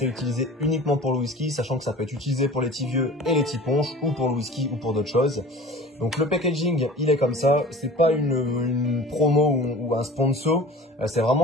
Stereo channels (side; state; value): both; normal; correlation 0.41